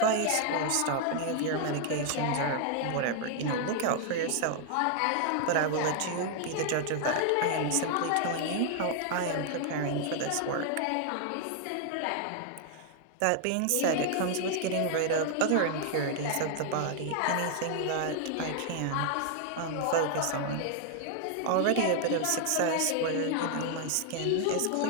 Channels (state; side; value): different; both; correlation 0.00